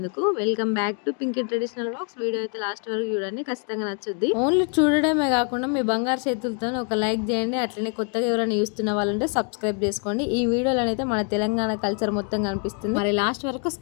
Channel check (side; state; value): right; quieter; 37.4 dB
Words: Welcome back to Pinky traditional vlogs. Video అయితే లాస్ట్ వరకు చూడండి, ఖచ్చితంగా నచ్చుద్ది. ఓన్లీ చూడడమే కాకుండా మీ బంగారు చేతులతో ఒక లైక్ చేయండి. అట్లనే కొత్తగా ఎవరైనా చూస్తున్న వాళ్ళంటే సబ్స్క్రైబ్ చేసుకోండి. ఈ వీడియోలో అయితే మన తెలంగాణ కల్చర్ మొత్తం కనిపిస్తుంది. మరి లాస్ట్ వరకు